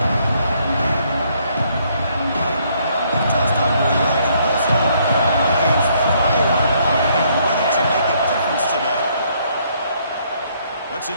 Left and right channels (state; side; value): inverted; both; correlation -0.68